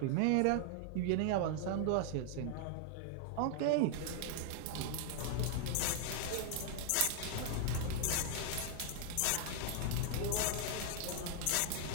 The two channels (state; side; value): different; both; correlation -0.01